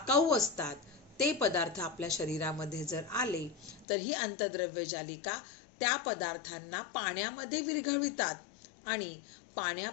असतात ते पदार्थ आपल्या शरीरामध्ये जर आले तर ही अंतर्द्रव्य जालिका त्या पदार्थांना पाण्यामध्ये विरघळवितात आणि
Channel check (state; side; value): drops out; right; at 3.9 s